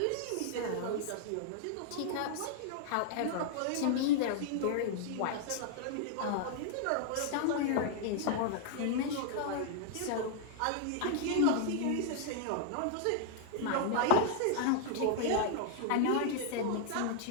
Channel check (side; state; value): both; different; correlation -0.01